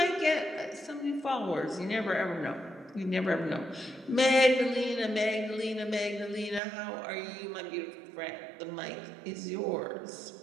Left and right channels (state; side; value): drops out; left; at 6.6 s